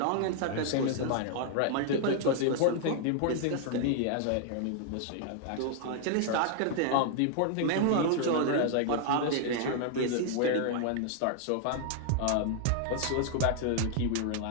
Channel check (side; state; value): both; different; correlation 0.00